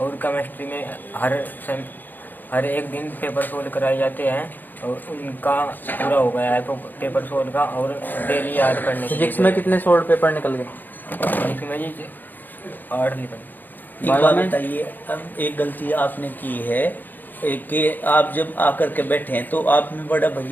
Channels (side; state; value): right; late; 0.088 ms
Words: केमिस्ट्री में हर एक दिन पेपर सोल्व कराए जाते हैं, और उनका पूरा हो गया है तो पेपर सोल्व का, और डेली याद करने के फिजिक्स में कितने सॉल्व पेपर निकल गए? इसमें जी 8 निकल। एक बात बताइए, अब एक गलती आपने की है कि आप जब आकर के बैठे हैं तो आप में बड़ा